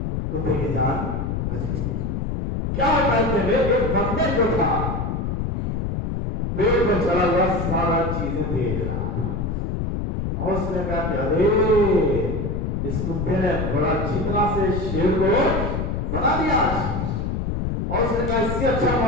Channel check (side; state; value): left; noise; rumble, 2 dB below the sound